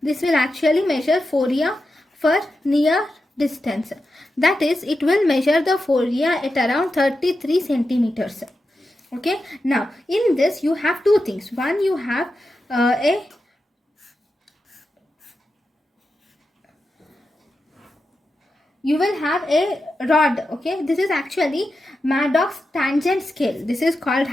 This will actually measure phoria for near distance. That is, it will measure the phoria at around 33 centimeters. Okay. Now, in this, you have two things. One, you have you will have a rod. Okay, this is actually Madox tangent scale. This is called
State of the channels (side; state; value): both; normal; correlation 0.89